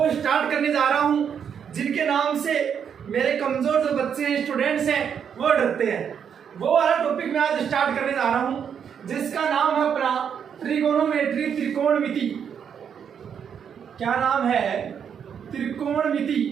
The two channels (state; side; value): quieter; left; 7.7 dB